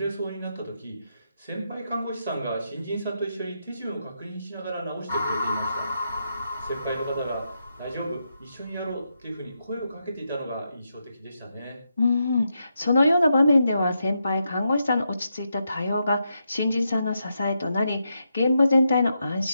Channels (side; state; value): both; inverted; correlation -0.84